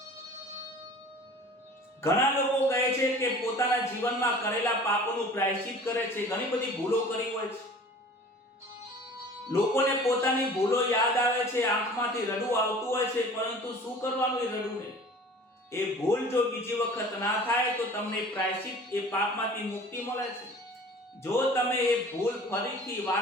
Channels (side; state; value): both; normal; correlation 0.45